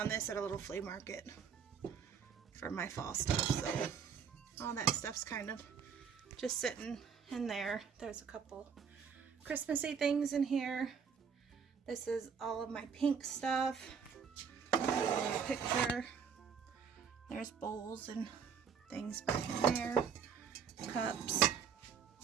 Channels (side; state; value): left; quieter; 6.7 dB